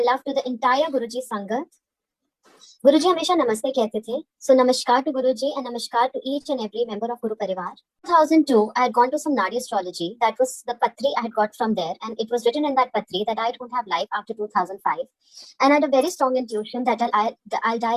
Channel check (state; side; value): identical; both; correlation 1.00